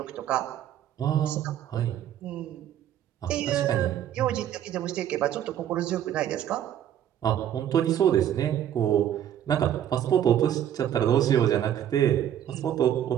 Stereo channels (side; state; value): left; quieter; 10.6 dB